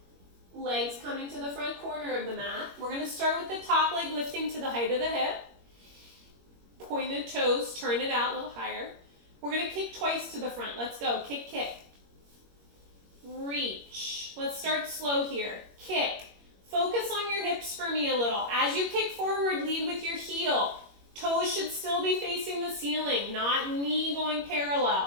Legs coming to the front corner of the mat. We're going to start with the top leg lifting to the height of the hip. Pointed toes, turn it out a little higher. We're going to kick twice to the front. Let's go. Kick, kick. Reach. Let's start slow here. Kick. Focus on your hips for me a little. As you kick forward, lead with your heel. Toes should still be facing the ceiling, not knee going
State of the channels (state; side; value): late; left; 21 ms